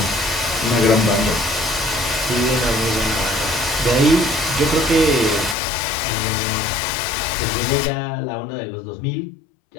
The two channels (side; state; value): right; drops out; at 5.6 s